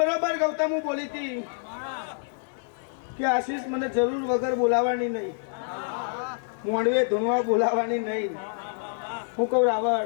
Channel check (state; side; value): silent; right; 60 dB below the other